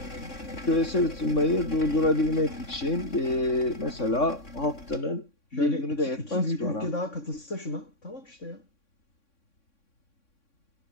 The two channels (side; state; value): right; late; 3.6 ms